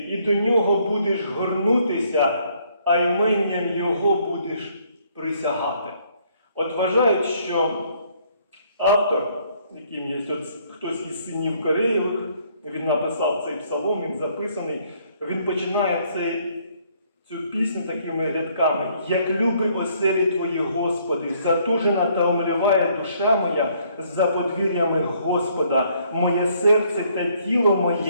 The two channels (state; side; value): inverted; both; correlation -0.66